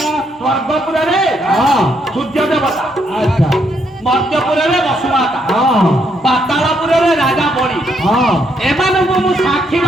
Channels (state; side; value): normal; both; correlation 0.74